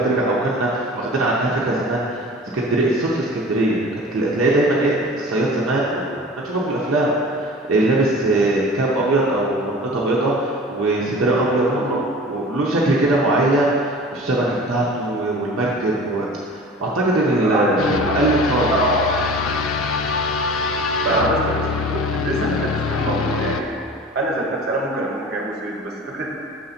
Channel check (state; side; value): normal; both; correlation 0.40